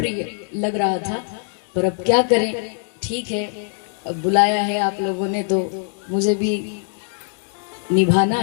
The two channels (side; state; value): right; silent; 62 dB below the other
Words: लग रहा था। पर अब क्या करें, ठीक है, अब बुलाया है आप लोगों ने तो मुझे भी निभाना